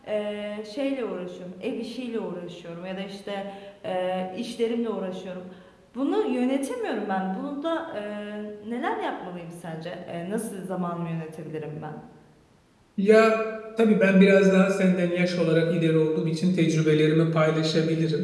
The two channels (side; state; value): both; identical; correlation 1.00